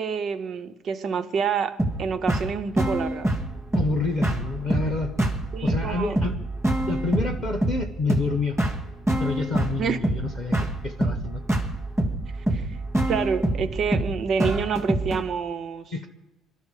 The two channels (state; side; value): normal; both; correlation 0.76